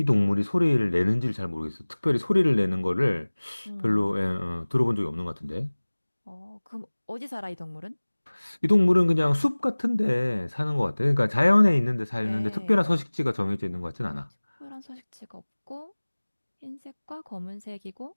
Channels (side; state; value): both; inverted; correlation -1.00